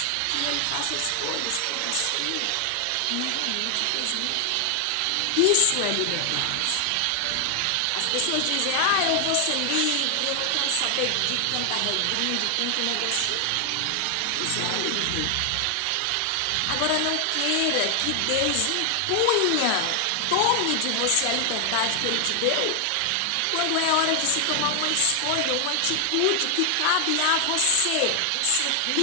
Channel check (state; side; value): different; both; correlation 0.00